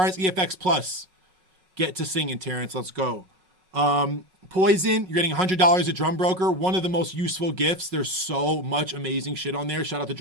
EFX Plus. Get to singing, Terrence. Let's go. Poison, you're getting $100 at Drum Broker. One of the most useful gifts. There's so much amazing shit on there. Shout out to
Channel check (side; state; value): left; late; 5.4 ms